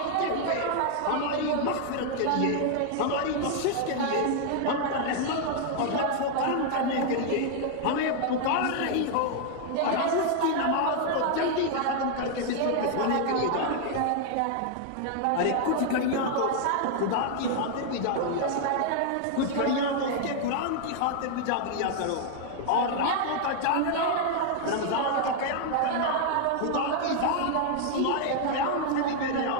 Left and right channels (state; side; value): different; both; correlation 0.00